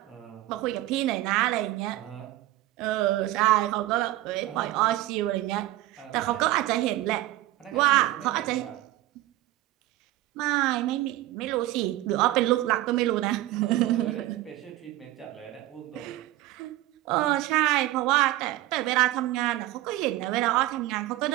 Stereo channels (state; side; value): quieter; left; 16.0 dB